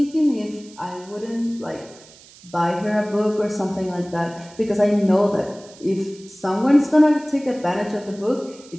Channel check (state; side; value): noise; right; hiss, 23 dB below the sound